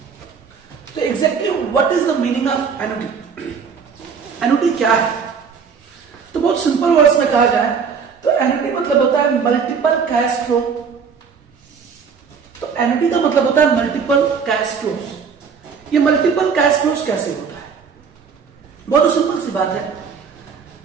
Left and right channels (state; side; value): quieter; left; 6.1 dB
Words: तो exactly what is the meaning of annuity? annuity क्या है? तो बहुत simple words में कहा जाए तो annuity मतलब होता है मल्टीपल कैश फ्लो. तो annuity का मतलब होता है मल्टीपल कैश फ्लोज. ये मल्टीपल कैश फ्लोज कैसे होता है? बहुत सिंपल सी बात है.